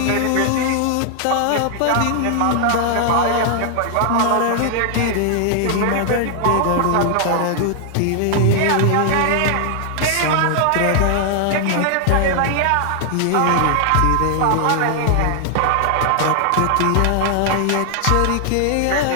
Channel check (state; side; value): different; both; correlation 0.00